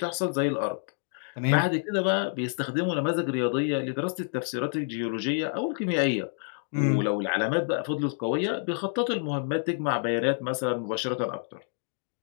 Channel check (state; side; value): silent; right; 59 dB below the other